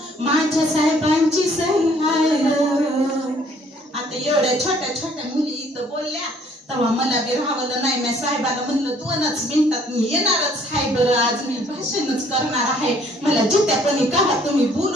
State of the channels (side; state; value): both; normal; correlation 0.60